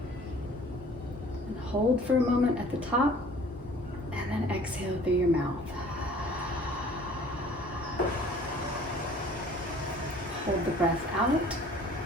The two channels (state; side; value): normal; both; correlation 0.51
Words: And hold for a moment at the top. And then exhale through your mouth. Hold the breath out.